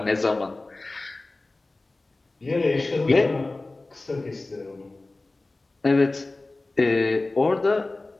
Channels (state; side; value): quieter; right; 3.1 dB